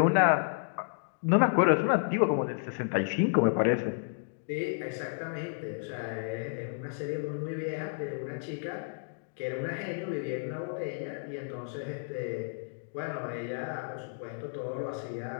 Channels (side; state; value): right; silent; digital silence